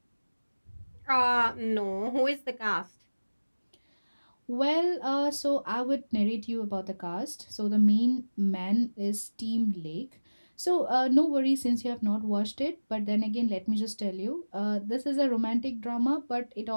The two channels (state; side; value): inverted; both; correlation -1.00